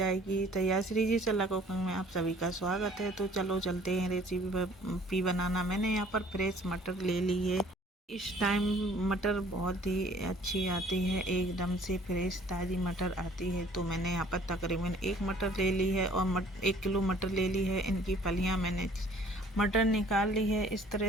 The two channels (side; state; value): both; normal; correlation 0.55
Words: तैयार। श्री जी सलाह कुकिंग में आप सभी का स्वागत है। तो चलो चलते हैं रेसिपी बनाना। मैंने यहाँ पर फ्रेश मटर ले ली है। इस टाइम मटर बहुत ही अच्छी आती है, एकदम से फ्रेश ताज़ी मटर आती है। तो मैंने यहाँ पर तकरीबन 1 मटर ले ली है और 1 किलो मटर ले ली है। इनकी फलियाँ मैंने मटर निकाल ली है। इस